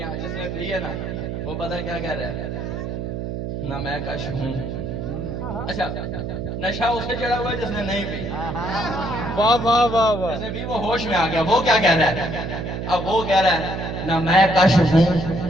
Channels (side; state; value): right; noise; hum, 5 dB below the sound